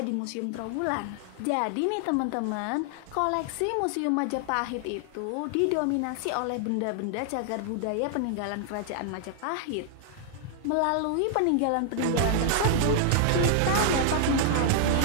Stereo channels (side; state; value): both; different; correlation 0.00